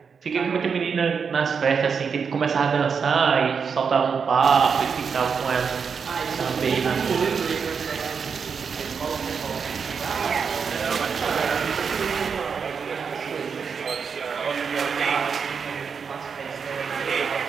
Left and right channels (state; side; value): quieter; left; 6.1 dB